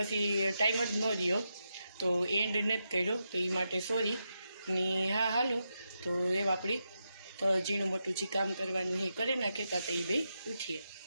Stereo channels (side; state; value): both; inverted; correlation -0.86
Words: ટાઈમ જ ન રહ્યો તો એન્ડ નથી કર્યો, તો એ માટે સોરી ને. હા હાલો, તો એ આપણી તો ઝીણું મોટું જે કામ કરવાનું એ કરે નાખેતા તો એ બે ઉઠીએ.